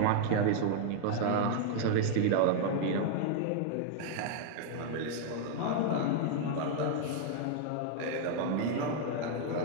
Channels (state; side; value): different; both; correlation 0.00